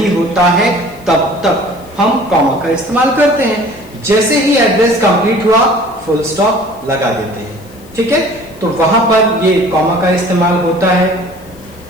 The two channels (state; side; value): noise; left; hiss, 26 dB below the sound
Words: होता है तब तक हम कॉमा का इस्तेमाल करते हैं। जैसे ही एड्रेस कंप्लीट हुआ फुल स्टॉप लगा देते हैं। ठीक है, तो वहां पर ये कॉमा का इस्तेमाल होता है।